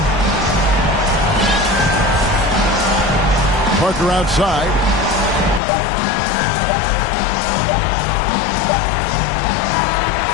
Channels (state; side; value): drops out; right; at 5.6 s